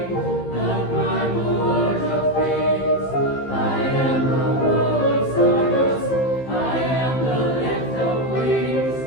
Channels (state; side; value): late; right; 15 ms